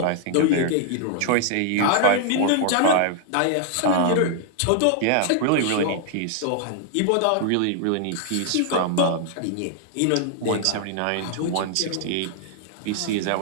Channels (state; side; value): different; both; correlation 0.00